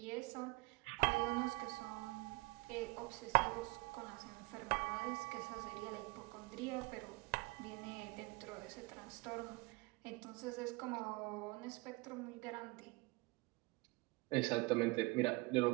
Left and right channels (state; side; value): quieter; left; 24.5 dB